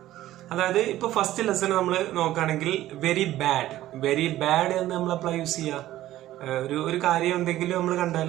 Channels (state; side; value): quieter; left; 14.4 dB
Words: അതായത് ഇപ്പൊ ഫസ്റ്റ് ലെസൺ നമ്മൾ നോക്കുകയാണെങ്കിൽ വെരി ബാഡ് എന്ന് നമ്മൾ അപ്ലൈ യൂസ് ചെയ്യുക. ഒരു കാര്യം എന്തെങ്കിലും നമ്മൾ കണ്ടാൽ